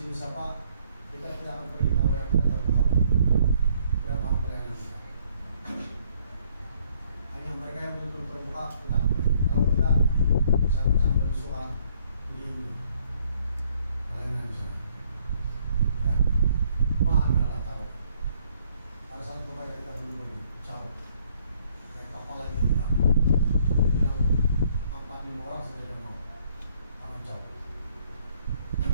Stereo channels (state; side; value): inverted; both; correlation -0.64